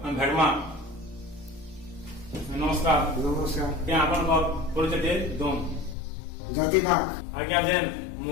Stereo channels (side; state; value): right; drops out; at 6.0 s